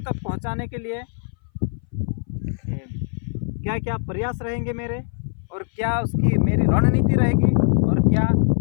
तक पहुँचाने के लिए क्या क्या प्रयास रहेंगे मेरे और क्या उसकी मेरी रणनीति रहेगी और क्या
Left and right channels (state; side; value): silent; right; 60 dB below the other